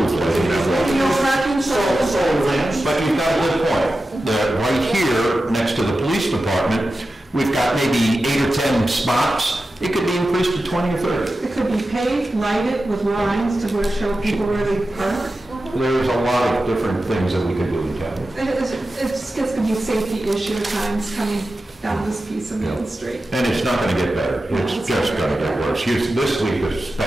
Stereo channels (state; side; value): normal; both; correlation 0.93